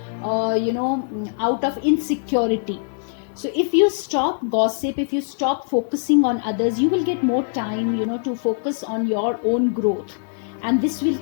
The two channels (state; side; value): silent; right; 63 dB below the other